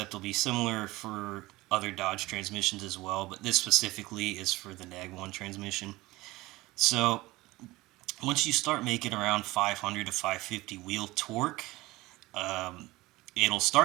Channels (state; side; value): quieter; left; 19.7 dB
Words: will be similar for other Dodge transmissions as well, but this specifically is for the NAG 1 transmission. So once you start making around 500 to 550 wheel torque, um, it'll